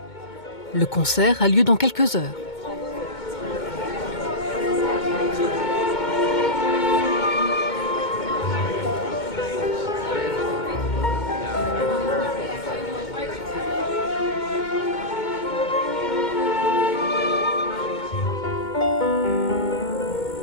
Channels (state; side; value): late; right; 2.2 ms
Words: Le concert a lieu dans quelques heures.